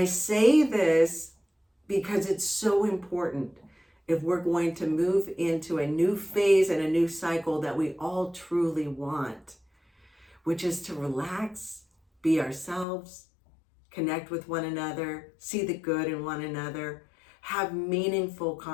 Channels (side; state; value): right; drops out; at 12.9 s